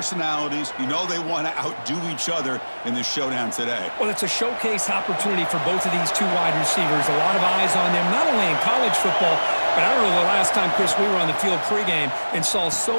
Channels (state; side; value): inverted; both; correlation -1.00